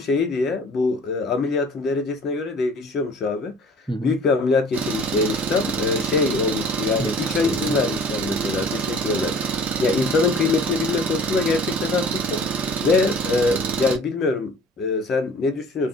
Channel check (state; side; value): normal; both; correlation 0.48